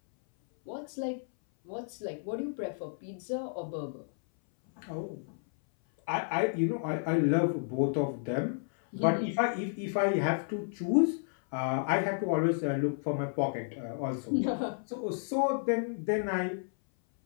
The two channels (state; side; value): silent; right; 57 dB below the other